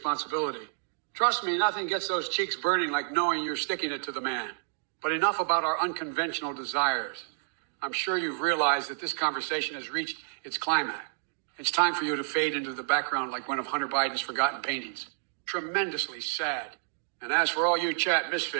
Trust me, nothing gets those cheeks burning like knowing you're sticking it to the man. But enough about our unconventional desires. I'm sure you've realized that this conversation has reached its climax. It's time for you to fade into the background like one of Hunter Biden's forgotten paintings. Tremendously sad. And as for all you chat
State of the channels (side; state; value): left; silent; digital silence